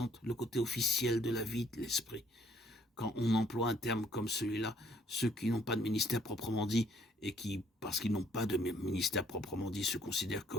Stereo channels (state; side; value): normal; both; correlation 0.64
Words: le côté officiel de la vie de l'Esprit. Quand on emploie un terme comme celui-là, ceux qui n'ont pas de ministère proprement dit et qui, parce qu'ils n'ont pas de ministère proprement dit, se considèrent